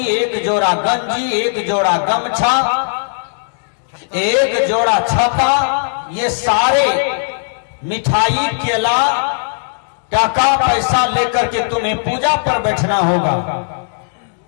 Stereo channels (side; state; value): right; silent; digital silence